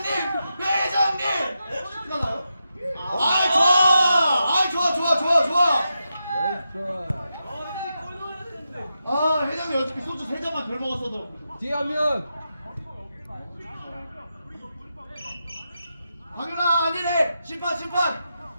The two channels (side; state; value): both; inverted; correlation -0.88